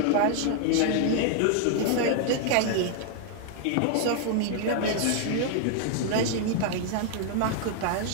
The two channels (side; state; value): both; different; correlation 0.00